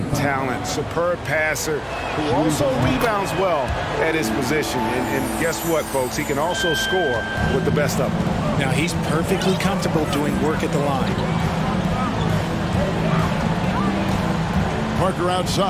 talent, superb passer who also rebounds well at his position. And guess what, folks? He can also score with the best of them. Now, he's perfectly comfortable doing work at the line. Parker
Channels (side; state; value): both; identical; correlation 1.00